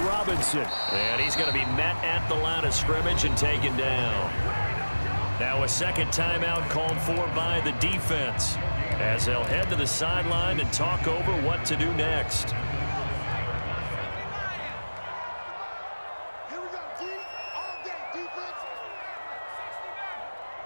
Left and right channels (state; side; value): inverted; both; correlation -1.00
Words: Robinson. And he's going to be met at the line of scrimmage and taken down. Now a second timeout called for by the defense, as they'll head to the sideline and talk over what to do next. Here we go, D. All day, defense.